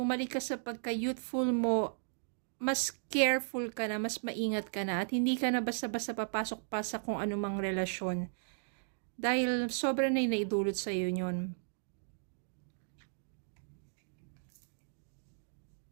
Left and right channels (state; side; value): silent; left; digital silence